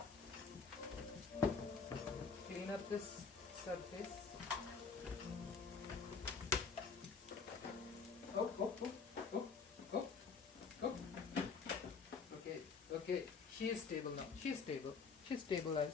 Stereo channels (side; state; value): right; quieter; 5.3 dB